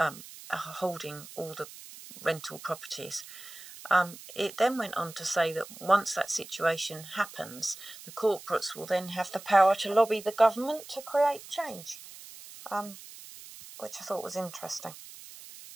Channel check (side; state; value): right; noise; hiss, 16 dB below the sound